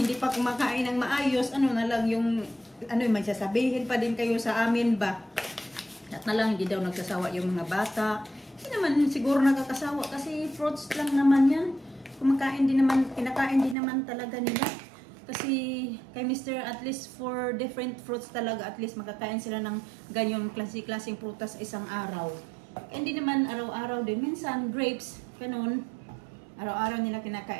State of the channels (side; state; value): left; drops out; at 13.8 s